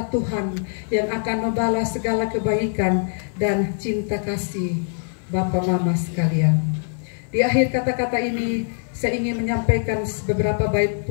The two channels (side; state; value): right; silent; 57 dB below the other